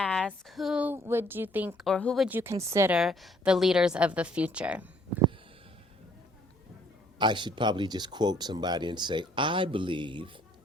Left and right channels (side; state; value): both; normal; correlation 0.62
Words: who would you think, or who would you consider the leaders of the future? I should probably just quote somebody and say, I believe